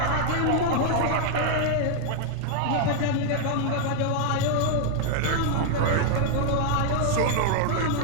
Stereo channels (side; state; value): both; different; correlation 0.00